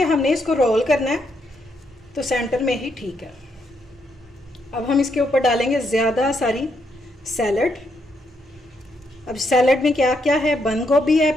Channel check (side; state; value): both; normal; correlation 0.77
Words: हमने इसको रोल करना है तो सेंटर में ही ठीक है। अब हम इसके ऊपर डालेंगे ज़्यादा सारी सैलड। अब सैलड में क्या क्या है, बंद गोभी है,